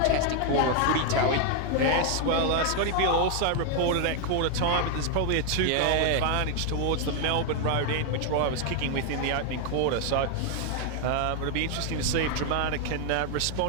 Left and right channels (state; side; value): different; both; correlation 0.00